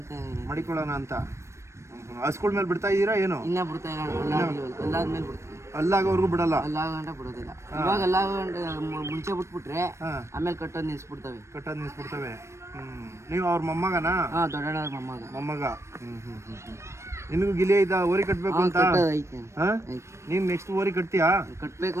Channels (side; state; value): left; late; 0.13 ms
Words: ಮಡಿಕೊಳ್ಳೋಣ ಅಂತ ಹಸ್ಗಳ ಮೇಲೆ ಬಿಡ್ತಾ ಇದ್ದೀರಾ ಏನು? ಇನ್ನ ಬಿಡ್ತಾ ಇಲ್ಲ, ಅಲ್ಲಾದ್ಮೇಲೆ ಬಿಡ್ತೀವಿ. ಅಲ್ಲಾಗೋರ್ಗು ಬಿಡಲ್ಲ? ಅಲ್ಲಾಗಂಟ ಬಿಡೋದಿಲ್ಲ. ಇವಾಗ ಅಲ್ಲಾಗಂಟ ಮುಂಚೆ ಬಿಟ್ಬಿಟ್ರೆ ಆಮೇಲೆ ಕಟ್ಟೋದು ನಿಲ್ಸ್ಬಿಡ್ತವೆ. ನೀವು ಅವ್ರ ಮೊಮ್ಮಗನಾ? ದೊಡ್ಡಣ್ಣ ಮೊಮ್ಮಗ. ನಿನಗೂ ಗಿಲಿ ಐತಾ ಓರಿ ಕಟ್ಬೇಕು ಅಂತ? ನೀನ್ ನೆಕ್ಸ್ಟ್ ಓರಿ ಕಟ್ತೀಯಾ? ಕಟ್ಬೇಕು